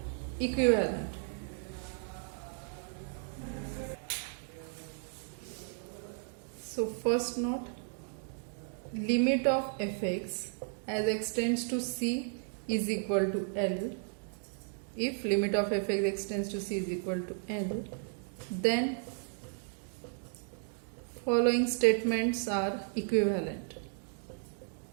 equivalent. So first note, limit of fx as x tends to c is equal to L. If limit of fx x tends to c is equal to L, then following statements are equivalent.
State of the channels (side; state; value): left; silent; 55 dB below the other